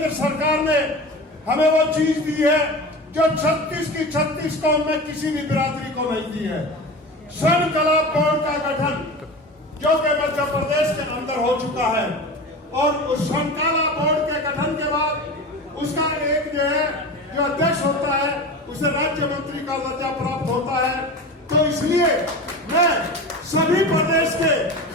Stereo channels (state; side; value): normal; both; correlation 0.30